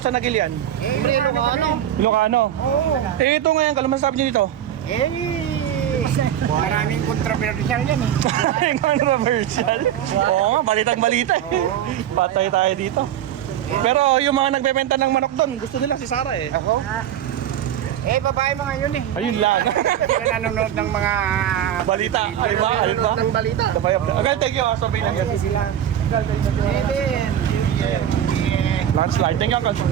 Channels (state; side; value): quieter; left; 10.5 dB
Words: sa Nagilian? Ilocano. Eh, ito ngayon, kalo masasabi niyo dito? Maraming controversial yan eh. Maraming controversial. Oo nga, balitang balita eh. Patay tayo dito. Pero yung mga nagbebenta ng manok doon, gusto nila si Sara eh. Ako? Babae mga yun eh. Ayun lang. Sila nanonood ng mga Balita. Ayun ba? Ng balita. Agad, thank you. Sabi lang Kasi sila. BBM. Landslide. Thank you, Uncle.